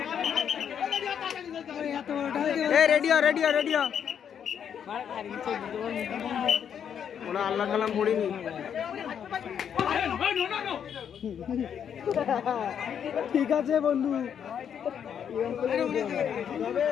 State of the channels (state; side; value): quieter; right; 8.3 dB